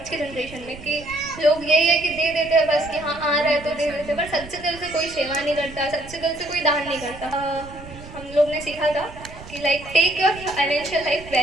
के जनरेशन में कि लोग यही है कि दे देते हैं बस कि हाँ आ रहा है तो दे देते हैं, पर सच्चे दिल से कोई सेवा नहीं करता, सच्चे दिल से कोई दान नहीं करता। हम लोग ने सीखा था कि like take your financial life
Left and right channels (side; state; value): right; noise; rumble, 16 dB below the sound